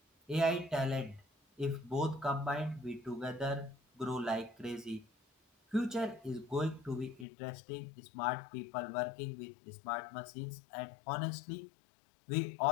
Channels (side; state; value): right; drops out; at 7.2 s